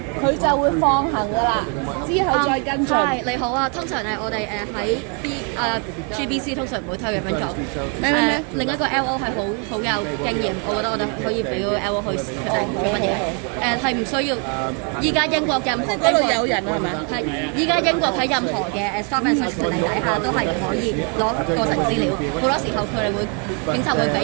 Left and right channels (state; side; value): quieter; left; 37.7 dB